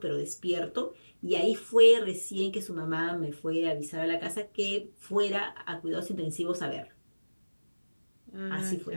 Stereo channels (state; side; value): inverted; both; correlation -1.00